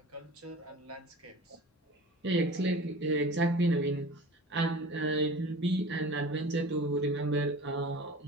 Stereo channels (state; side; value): normal; both; correlation 0.38